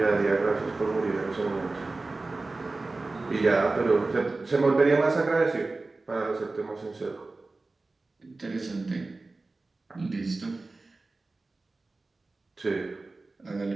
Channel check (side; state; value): left; quieter; 3.4 dB